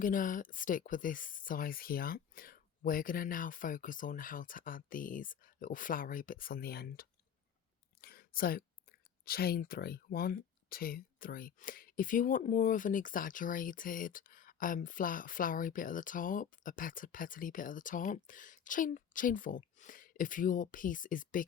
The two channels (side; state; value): right; quieter; 8.2 dB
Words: to stick with this size here, we're going to now focus on how to add these little flowery bits on the end. So chain 3, 1, 2, 3. If you want more of an exaggerated flowery bit at the top, a petally bit at the top, chain 4. If your piece is